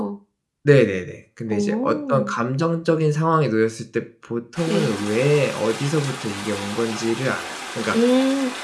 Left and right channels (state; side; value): identical; both; correlation 1.00